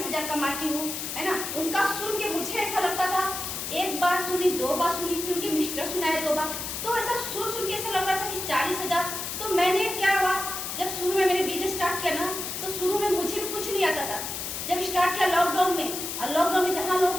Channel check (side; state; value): left; noise; hiss, 5 dB below the sound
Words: कमाती हूँ, है ना। उनका सुन के मुझे ऐसा लगता था, एक बार सुनी, 2 बार सुनी, फिर उनके मिस्टर सुनाए 2 बार, तो ऐसा सुन के ऐसा लग रहा था कि 40,000। तो मैंने क्या हुआ, जब शुरू में मैंने बिजनेस स्टार्ट किया ना, तो शुरू में मुझे भी कुछ नहीं आता था। जब स्टार्ट किया लॉकडाउन में, और लॉकडाउन में जहाँ लोगों